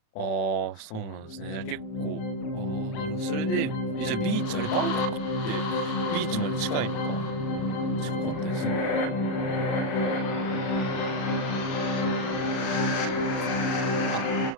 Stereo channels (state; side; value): late; right; 37 ms